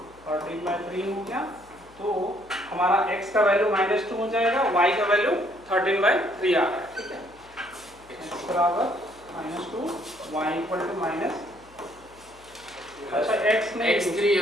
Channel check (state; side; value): noise; left; hum, 26 dB below the sound